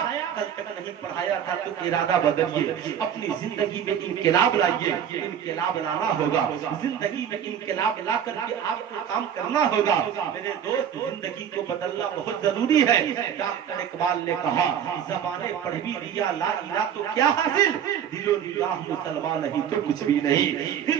کل تک نہیں پڑھایا تھا تو ارادہ بدلیے, اپنی زندگی میں انقلاب لائیے. انقلاب لانا ہوگا, زندگی میں انقلاب لا کر کے آپ کو کام کرنا ہوگا. میرے دوست زندگی کو بدلنا بہت ضروری ہے. ڈاکٹر اقبال نے کہا زبانیں پڑھ بھی دیا لا الہ تو کیا حاصل, دل و نگاہ مسلمان نہیں تو کچھ بھی نہیں,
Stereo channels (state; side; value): quieter; left; 9.0 dB